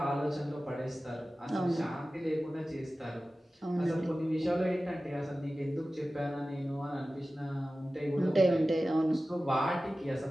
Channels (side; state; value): both; normal; correlation 0.96